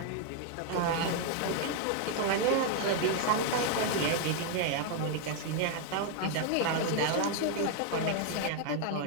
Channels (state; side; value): different; both; correlation 0.00